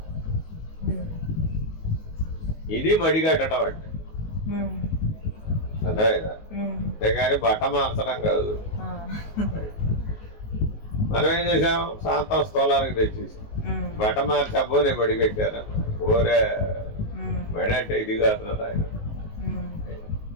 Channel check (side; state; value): right; late; 19 ms